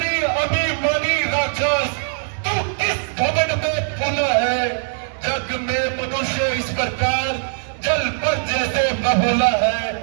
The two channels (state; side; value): silent; left; digital silence